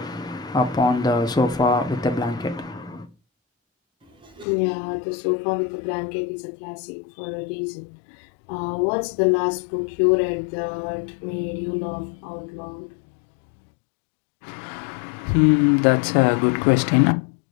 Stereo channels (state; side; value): drops out; right; at 4.5 s